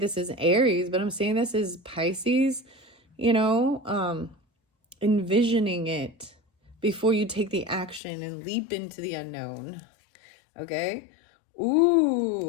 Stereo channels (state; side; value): drops out; right; at 8.0 s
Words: is Aries, but I'm saying this is Pisces, envisioning it before you take the action and leap into the unknown. Okay.